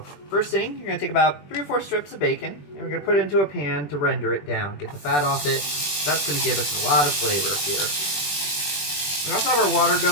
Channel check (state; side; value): late; right; 20 ms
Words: first thing, you're going to take about 3 or 4 strips of bacon, and we're going to put it into a pan to render it down. Get the fat off it. That's going to give us a lot of flavor here. We also have our water